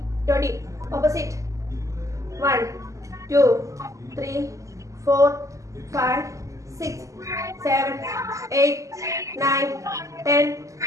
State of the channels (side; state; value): left; late; 0.16 ms